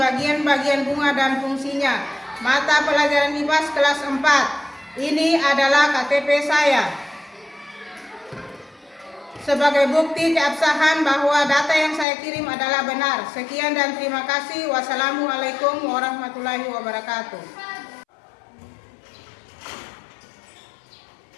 bunga dan fungsinya. Mata pelajaran IPAS kelas 4. Ini adalah KTP saya. Sebagai bukti keabsahan bahwa data yang saya kirim adalah benar. Sekian dan terima kasih. Wassalamualaikum warahmatullahi wabarakatuh.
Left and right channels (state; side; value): drops out; right; at 12.1 s